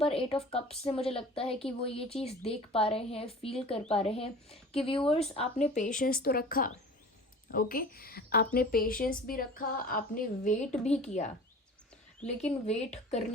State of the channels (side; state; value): both; normal; correlation 0.41